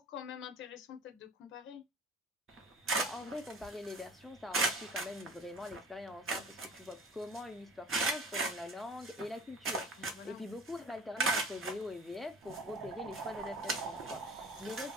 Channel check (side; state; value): both; normal; correlation 0.43